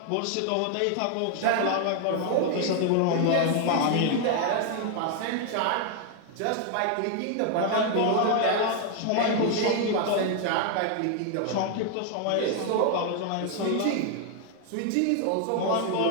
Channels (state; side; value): different; both; correlation 0.00